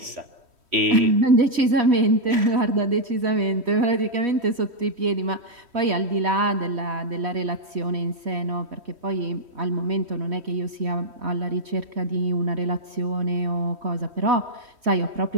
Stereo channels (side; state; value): left; late; 3.1 ms